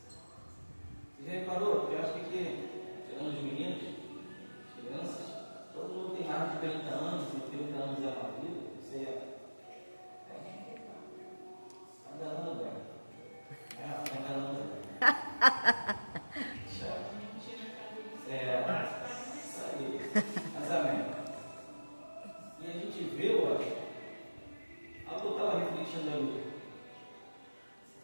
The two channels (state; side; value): inverted; both; correlation -1.00